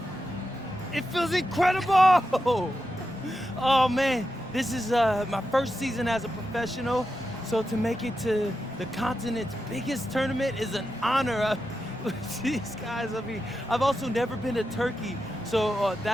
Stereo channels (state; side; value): normal; both; correlation 0.89